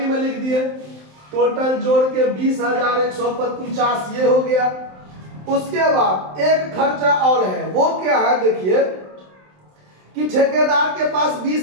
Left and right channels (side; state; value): left; late; 27 ms